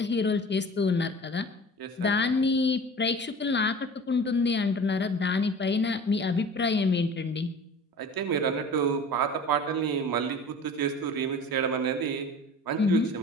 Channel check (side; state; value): both; normal; correlation 0.40